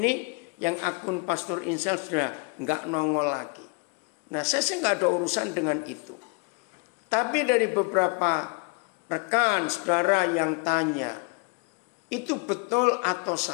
yang akun Pastor InStyle sudah nggak nongol lagi. Nah, saya sih nggak ada urusan dengan itu. Tapi dari beberapa rekan saudara yang tanya, itu betul atau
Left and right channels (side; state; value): right; quieter; 32.3 dB